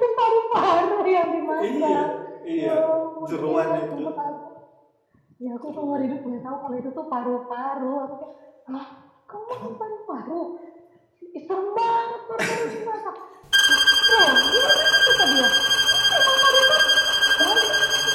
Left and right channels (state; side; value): identical; both; correlation 1.00